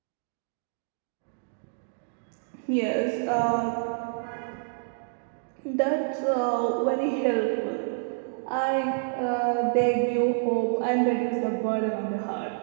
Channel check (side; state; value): left; silent; digital silence